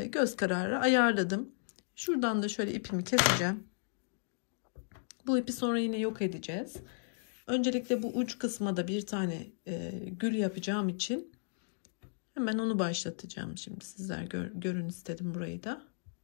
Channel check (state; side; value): silent; right; digital silence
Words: göz kararı ayarladım. Şuradan da şöyle ipimi keseceğim. Bu ipi sonra yine yok edeceğiz. Öncelikle bu uç kısma da bir tane gül yapacağım için hemen onu başlatacağım. Şimdi sizler görün istedim burayı da.